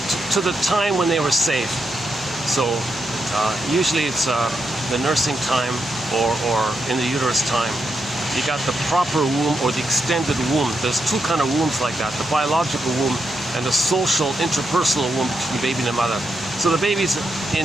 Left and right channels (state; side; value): normal; both; correlation 0.83